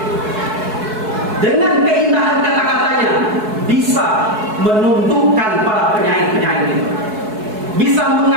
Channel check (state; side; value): late; left; 4.7 ms